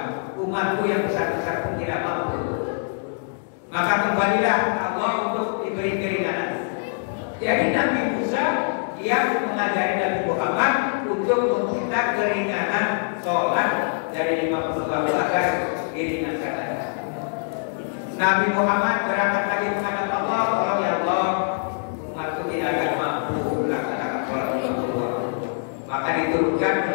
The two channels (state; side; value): silent; right; digital silence